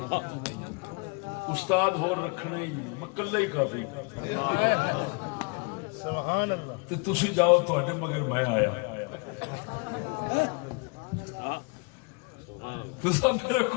استاد ہو رکھنے ہی مکلہ ہی کافی. سبحان اللہ تے تسی جاؤ تواڈے مگر میں آیا تسا میرے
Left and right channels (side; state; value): right; quieter; 31.4 dB